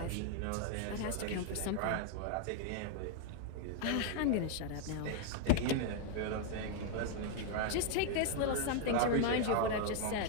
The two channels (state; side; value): different; both; correlation 0.00